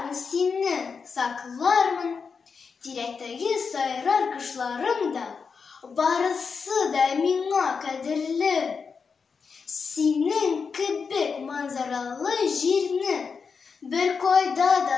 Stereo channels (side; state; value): right; quieter; 5.5 dB